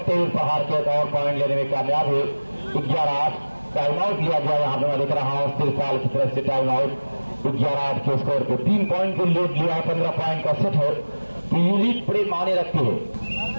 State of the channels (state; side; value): inverted; both; correlation -1.00